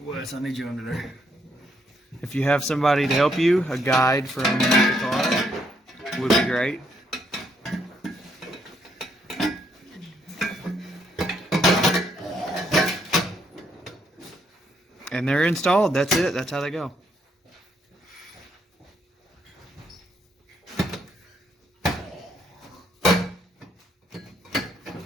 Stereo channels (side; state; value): both; normal; correlation 0.73